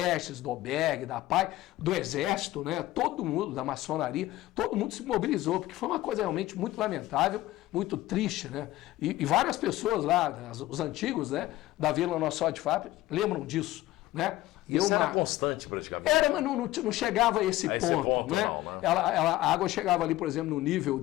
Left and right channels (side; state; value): right; quieter; 16.4 dB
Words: do albergue, da PAI, do Exército, né? Todo mundo, da maçonaria, todo mundo se mobilizou, porque foi uma coisa realmente muito lamentável, muito triste, né? E várias pessoas lá, os antigos, né, da Vila Nossa Senhora de Fátima, lembram disso. Né? Isso era constante praticamente. Era, mas não chegava a esse ponto. Né? Não, né? A água chegava ali, por exemplo, no nível